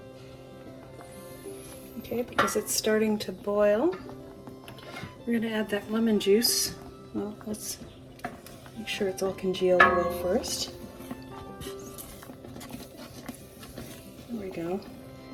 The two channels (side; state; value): both; identical; correlation 1.00